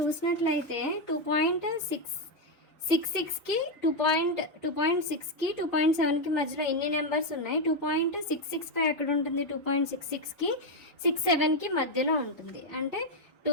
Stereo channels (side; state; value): both; normal; correlation 0.04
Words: 2.666కి 2.6కి 2.7కి మధ్యలో ఎన్ని నెంబర్స్ ఉన్నాయి, 2.665 ఎక్కడ ఉంటుంది, 2.66కి 67కి మధ్యలో ఉంటుంది. అంటే